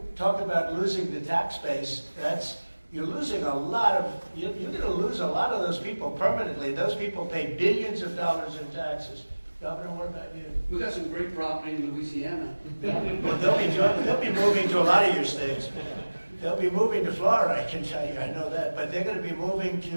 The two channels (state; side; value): inverted; both; correlation -1.00